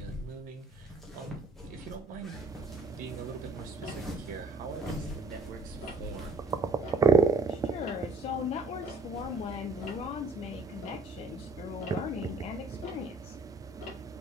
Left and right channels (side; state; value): left; quieter; 3.2 dB